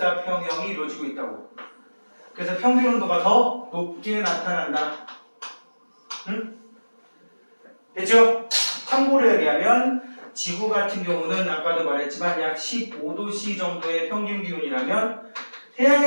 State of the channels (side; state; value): both; inverted; correlation -1.00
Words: 이루어지고 있다고. 그래서 평균 온도가 더 높게 나타난다. 응? 됐죠? 참고로 얘기하면 지구 같은 경우는 아까도 말했지만 약 15도C 정도의 평균 기온이라면